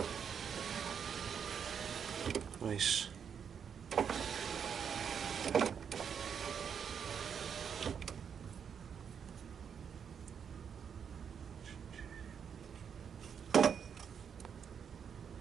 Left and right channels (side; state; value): left; quieter; 7.3 dB